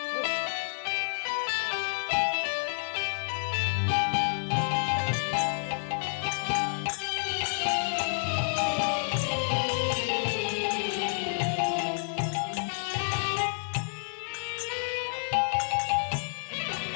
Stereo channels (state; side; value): silent; right; 58 dB below the other